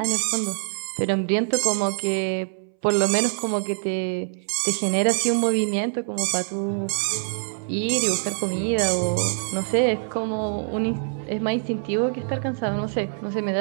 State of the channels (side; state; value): left; silent; 62 dB below the other